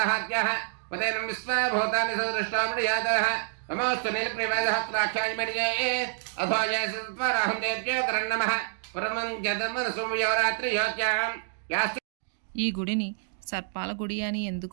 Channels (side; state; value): left; silent; digital silence